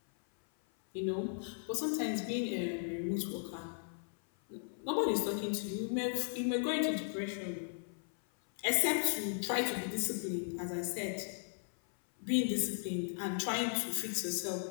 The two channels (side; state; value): right; silent; 53 dB below the other